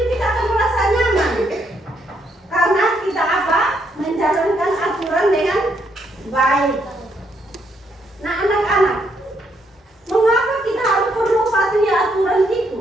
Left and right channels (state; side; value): normal; both; correlation 0.74